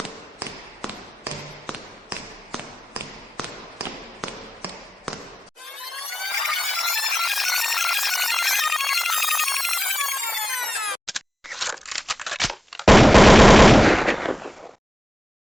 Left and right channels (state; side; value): normal; both; correlation 0.94